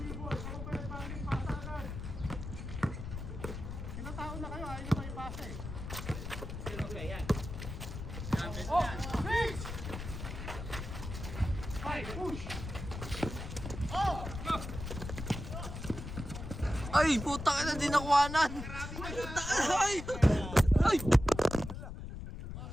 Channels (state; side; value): noise; left; rumble, 8 dB below the sound